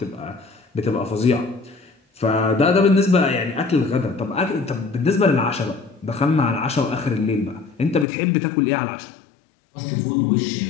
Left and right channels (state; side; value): drops out; right; at 8.1 s